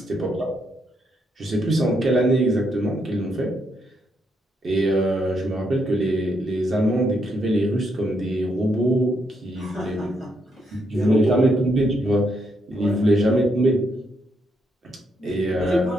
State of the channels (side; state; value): both; normal; correlation 0.77